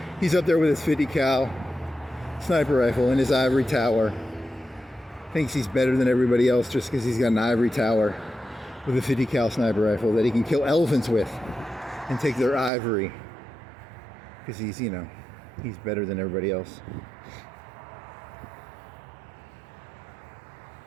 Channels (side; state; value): left; drops out; at 12.7 s